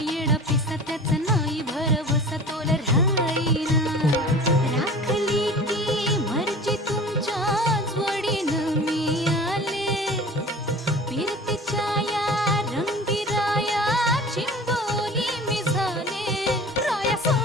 पिसा त्याचा नाही भरवसा तोल राहीना राखली ती मर्जी तुमच्याच वडीनं मी आले फिरतीच्या या रंगी राया चिंबोली मी झाले राया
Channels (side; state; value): both; normal; correlation 0.40